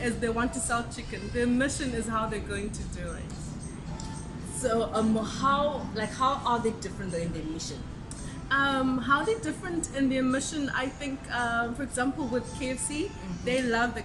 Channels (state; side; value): identical; both; correlation 1.00